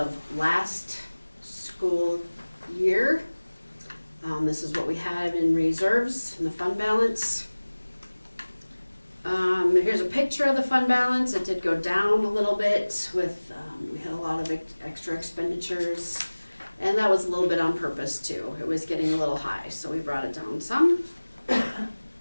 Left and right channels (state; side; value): inverted; both; correlation -1.00